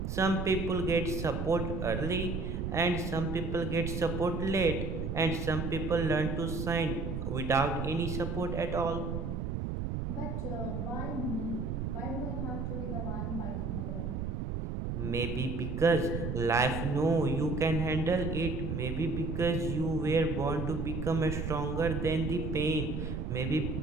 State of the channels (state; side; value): noise; right; rumble, 3 dB below the sound